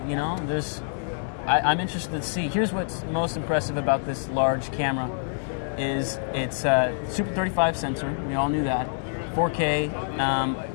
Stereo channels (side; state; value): right; silent; digital silence